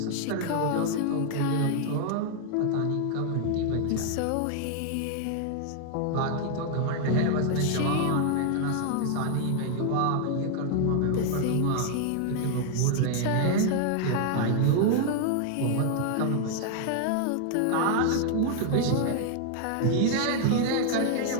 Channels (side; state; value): both; different; correlation 0.00